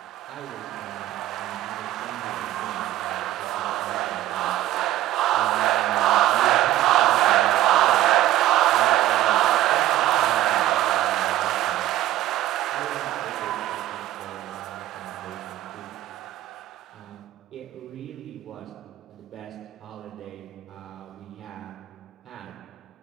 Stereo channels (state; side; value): quieter; left; 14.1 dB